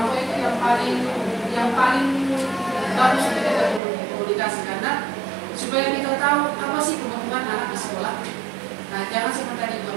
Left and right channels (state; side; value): drops out; left; at 3.8 s